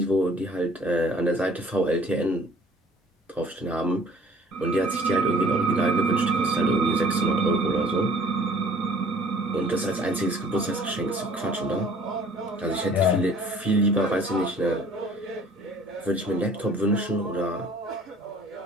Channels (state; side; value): normal; both; correlation 0.53